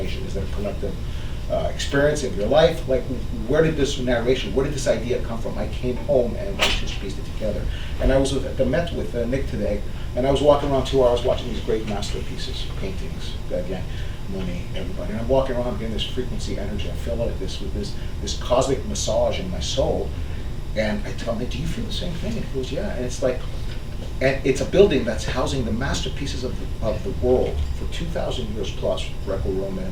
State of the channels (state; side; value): identical; both; correlation 1.00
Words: Is that a collective experience of your life? Like, where did this narration, where did this idea come from? I came home and I just pieced it together. And I was at the Met with Nick today, and I was walking around 2 hours watching these great masterpieces, paintings, again, Monet, everybody. And I'm walking around getting this frequency energy. I feel like this with this cosmic massage in my soul. And I tell him, do you feel the same thing? And he goes, yeah. And it's like, and it's a building that's housing the masterpieces of the world for 2,000 years plus, Greco-Roman,